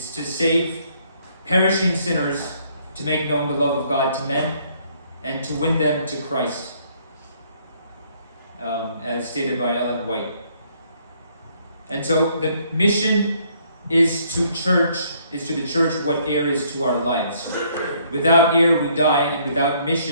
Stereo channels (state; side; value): inverted; both; correlation -0.66